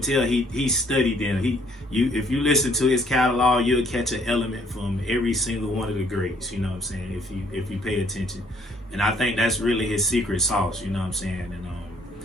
he studied them. If you listen to his catalog, you'll catch an element from every single one of the greats. You know what I'm saying? If you pay attention, and I think that's really his secret sauce. You know what I'm saying? And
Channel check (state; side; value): normal; both; correlation 0.64